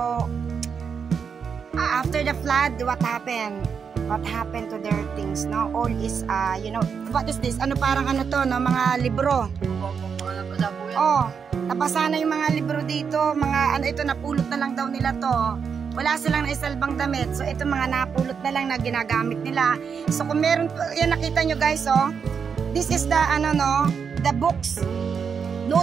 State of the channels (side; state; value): left; quieter; 6.4 dB